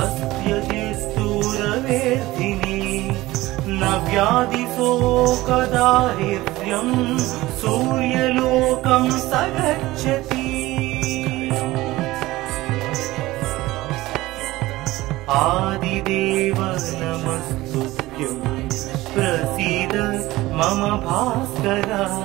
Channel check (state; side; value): quieter; left; 18.2 dB